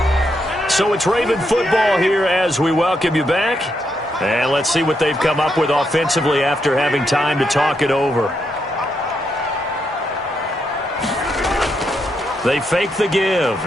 So it's Raven football here as we welcome you back. And let's see what they've come up with offensively after having time to talk it over. They fake the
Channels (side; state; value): both; normal; correlation 0.80